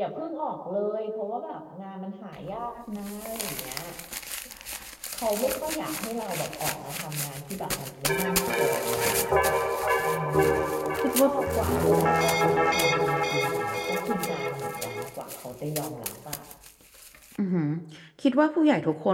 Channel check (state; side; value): identical; both; correlation 1.00